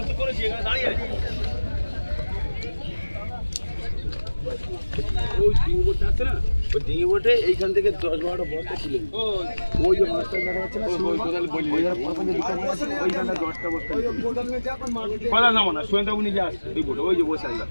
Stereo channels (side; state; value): both; inverted; correlation -1.00